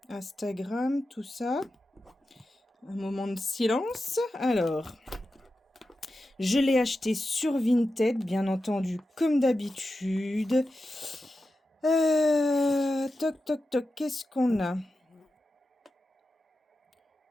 Instagram, tout ça. Un moment de silence. Alors, je l'ai acheté sur Vinted, bien entendu, comme d'habitude. Toc, qu'est-ce qu'on a?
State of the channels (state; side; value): normal; both; correlation 0.91